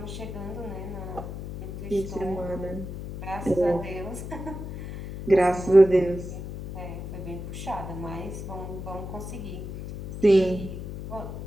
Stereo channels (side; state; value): left; noise; hum, 8 dB below the sound